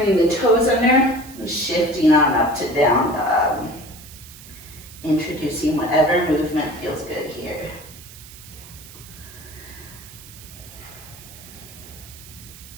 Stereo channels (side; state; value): right; noise; hiss, 18 dB below the sound